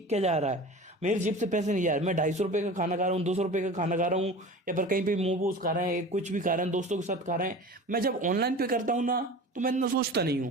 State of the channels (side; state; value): both; normal; correlation 0.36